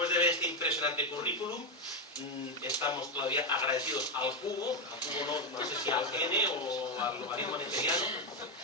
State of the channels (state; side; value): normal; both; correlation 0.07